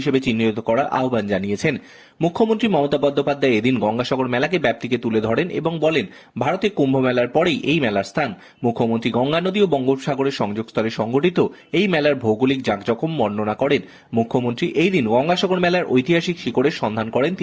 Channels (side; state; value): both; identical; correlation 1.00